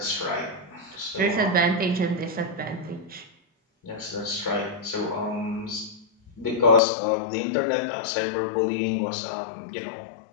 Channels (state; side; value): drops out; right; at 6.8 s